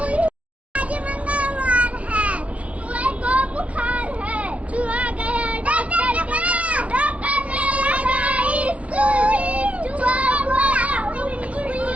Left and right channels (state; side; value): late; left; 0.064 ms